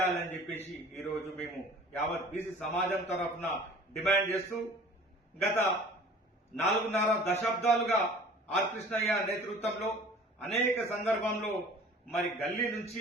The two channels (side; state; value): both; normal; correlation 0.46